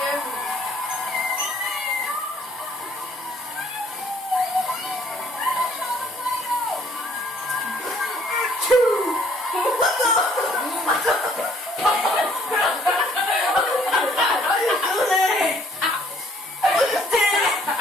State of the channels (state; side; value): normal; both; correlation 0.61